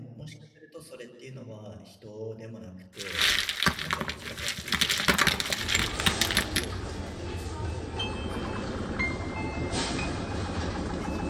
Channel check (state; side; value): identical; both; correlation 1.00